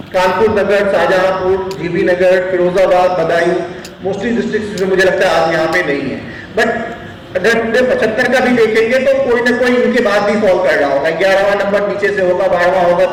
कानपुर नगर, शाहजहांपुर, जीबी नगर, फिरोजाबाद, बदायूं, मोस्टली डिस्ट्रिक्ट जो मुझे लगता है आज यहाँ पे नहीं है। बट अगर पूरे 75 का भी देखेंगे तो कोई ना कोई इनके बाद भी फॉल कर रहा होगा। 11वां नंबर नीचे से होगा, 12वां होगा,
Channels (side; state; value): both; identical; correlation 1.00